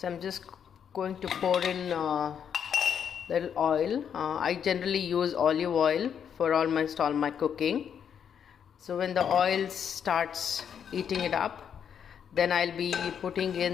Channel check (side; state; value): right; quieter; 8.0 dB